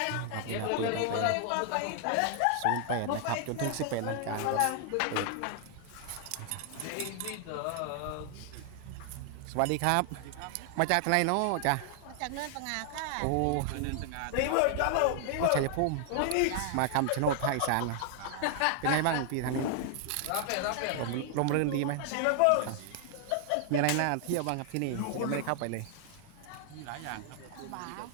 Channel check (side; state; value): both; different; correlation 0.00